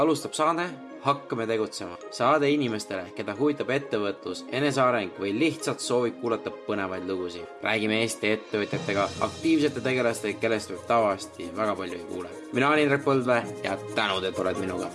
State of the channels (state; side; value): identical; both; correlation 1.00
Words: saade Hakkame tegutsema. Saade inimestele, keda huvitab ettevõtlus, eneseareng või lihtsalt soovib kuulata põnevaid lugusid. Räägime Eesti ettevõtjatega, aktiivsete tegelastega, kellest võib tavaliselt väga palju ei kuule. Mina olen Indrek Põldvee ja tänud, et oled minuga.